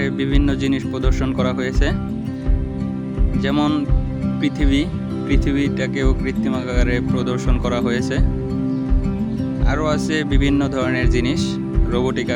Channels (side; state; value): both; identical; correlation 1.00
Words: বিভিন্ন জিনিস প্রদর্শন করা হয়েছে, যেমন পৃথিবীটাকেও কৃত্রিম আকারে প্রদর্শন করা হয়েছে। আরও আছে বিভিন্ন ধরনের জিনিস রোবোটিক